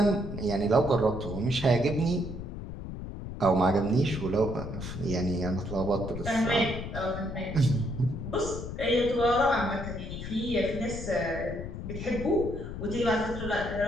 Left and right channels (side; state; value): left; noise; rumble, 8 dB below the sound